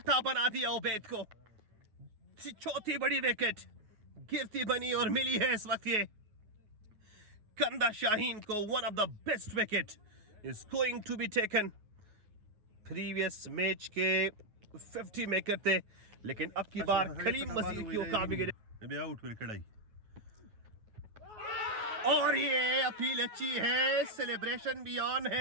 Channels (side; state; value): left; late; 9.4 ms